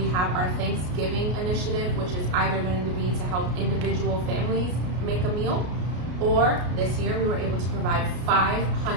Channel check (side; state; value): left; late; 33 ms